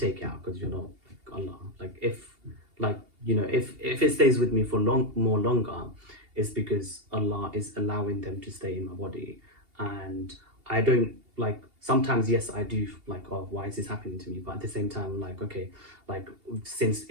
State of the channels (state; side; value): late; left; 2.8 ms